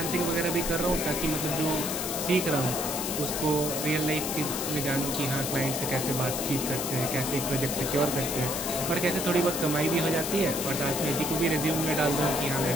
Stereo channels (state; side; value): noise; left; hiss, 3 dB below the sound